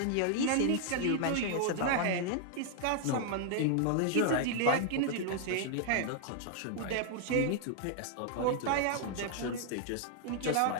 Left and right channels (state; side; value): different; both; correlation 0.00